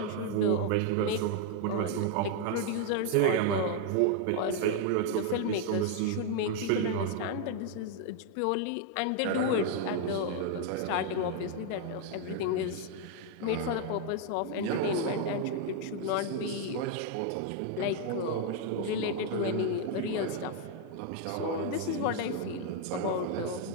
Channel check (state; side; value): different; both; correlation 0.00